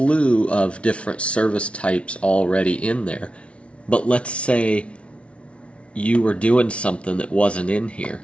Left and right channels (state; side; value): late; right; 0.061 ms